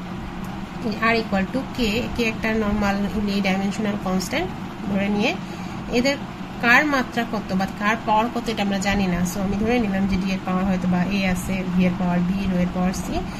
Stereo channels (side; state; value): both; identical; correlation 1.00